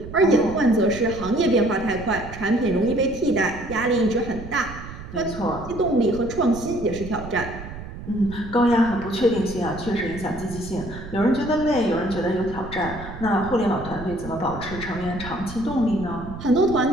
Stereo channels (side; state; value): right; noise; rumble, 12 dB below the sound